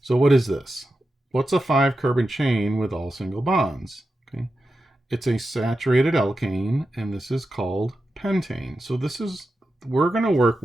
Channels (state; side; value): normal; both; correlation 0.90